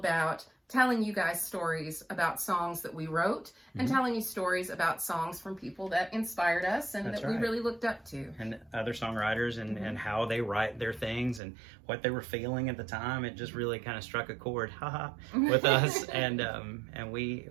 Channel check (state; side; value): drops out; left; at 11.4 s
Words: telling you guys stories about songs that we wrote and telling you stories about songs from people that inspired us and that we really looked up to. And other songwriters and how they write their things and what they were feeling at the time. It just really kind of struck a chord with us. And we